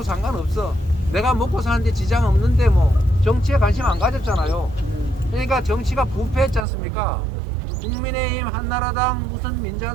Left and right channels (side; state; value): left; drops out; at 6.7 s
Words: 상관없어. 내가 먹고 사는데 지장 없는데 뭐 정치에 관심 안 가졌잖아요. 그러니까 정치가 부패했지 않습니까? 국민의힘, 한나라당, 무슨